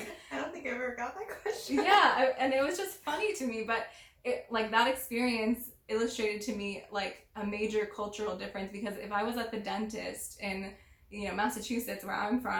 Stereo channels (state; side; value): identical; both; correlation 1.00